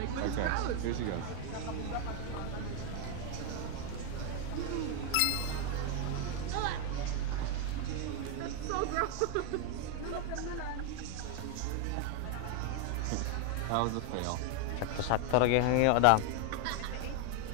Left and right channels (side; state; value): both; different; correlation 0.00